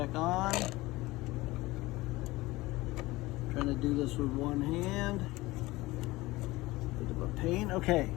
on. Trying to do this with one hand. Bit of a pain. Okay,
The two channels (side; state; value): right; quieter; 19.8 dB